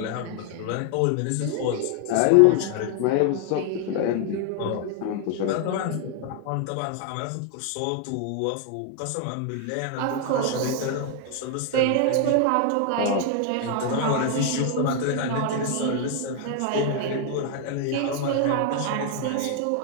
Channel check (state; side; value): different; both; correlation 0.00